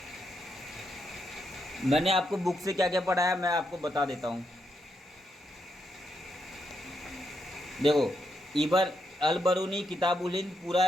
मैंने आपको बुक से क्या क्या पढ़ाया मैं आपको बता देता हूँ। देखो इबर अल बरूनी किताबुल हिंद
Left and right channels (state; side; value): normal; both; correlation 0.80